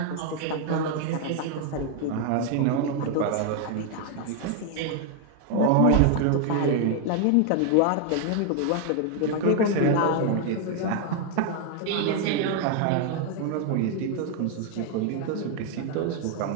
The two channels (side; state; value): both; different; correlation 0.01